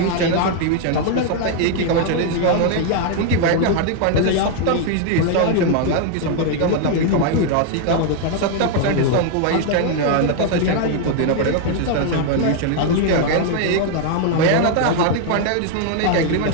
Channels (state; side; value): different; both; correlation 0.00